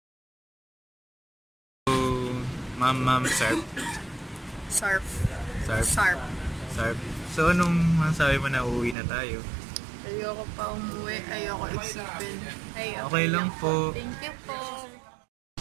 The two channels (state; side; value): drops out; left; at 9.0 s